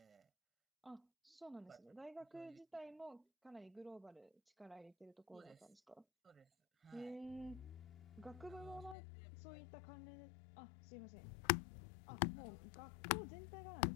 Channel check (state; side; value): drops out; right; at 9.0 s